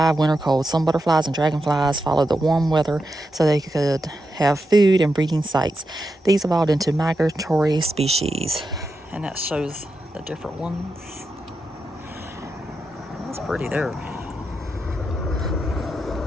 winter cold. Some butterflies and dragonflies followed the warm weather so they could have food and breeding sites. These evolved into migratory species. And that shows the different ones. That's pretty there.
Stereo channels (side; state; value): both; normal; correlation 0.87